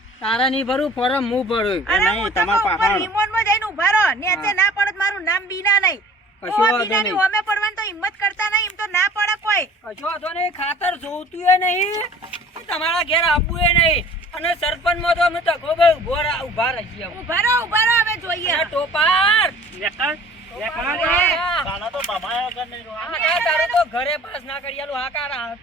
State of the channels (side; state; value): both; normal; correlation 0.48